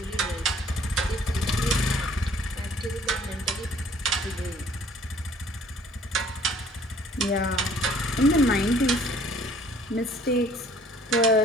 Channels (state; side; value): normal; both; correlation 0.56